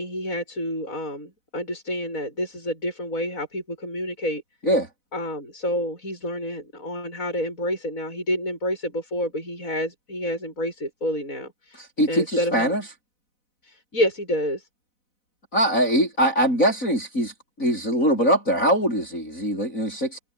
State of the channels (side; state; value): right; late; 4.0 ms